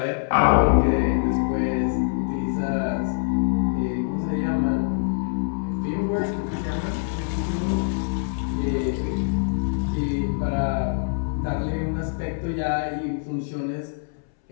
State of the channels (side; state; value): right; silent; 62 dB below the other